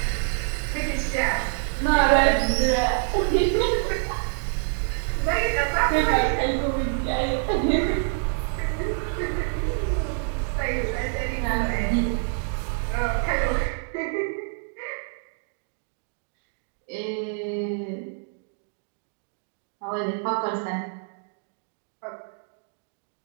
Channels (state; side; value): silent; left; 59 dB below the other